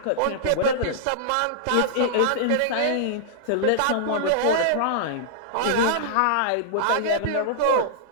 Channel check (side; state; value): both; different; correlation -0.02